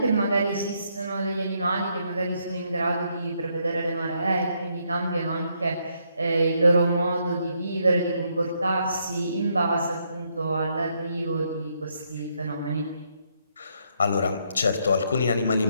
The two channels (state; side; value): inverted; both; correlation -0.75